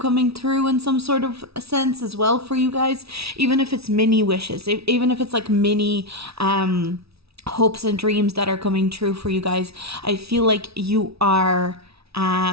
through in some sort of sense as well for you guys, even if it's mini wishes, even if it's like mini hopes and dreams that are coming true for you guys. I feel like you are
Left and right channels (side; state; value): left; late; 0.77 ms